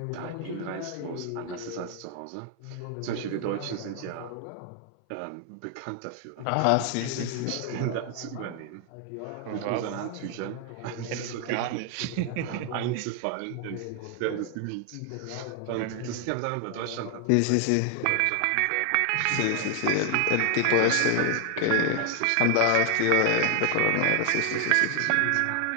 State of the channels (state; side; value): different; both; correlation 0.00